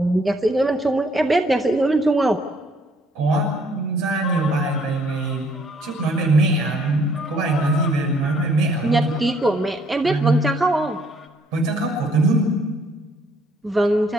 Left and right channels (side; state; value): both; normal; correlation 0.64